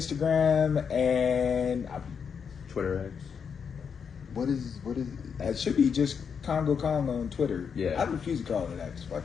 and Twitter X. what is it should be just Congo Kong on Twitter. Yeah. I refuse to call it X. Fuck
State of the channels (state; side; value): quieter; right; 6.7 dB